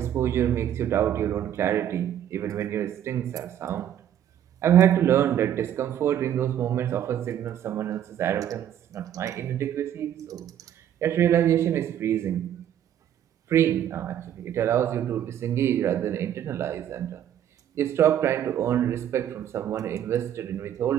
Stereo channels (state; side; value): quieter; left; 10.4 dB